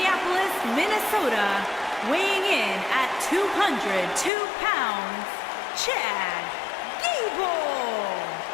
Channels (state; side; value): drops out; right; at 4.3 s